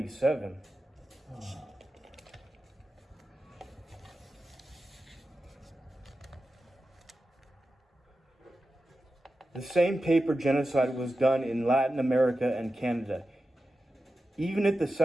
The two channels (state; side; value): normal; both; correlation 0.92